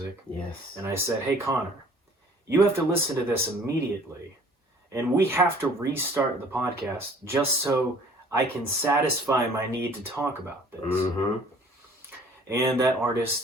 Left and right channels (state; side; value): normal; both; correlation 0.53